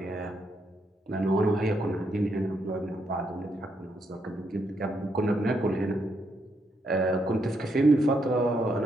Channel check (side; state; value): both; normal; correlation 0.78